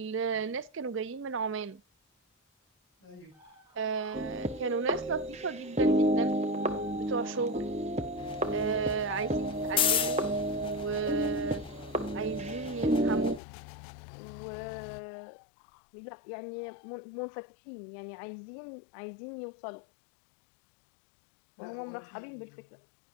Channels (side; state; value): right; drops out; at 13.4 s